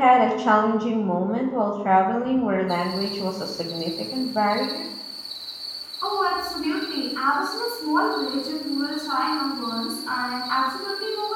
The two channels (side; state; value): both; identical; correlation 1.00